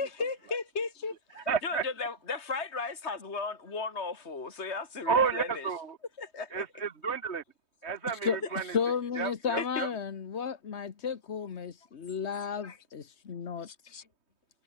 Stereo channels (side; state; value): right; late; 3.2 ms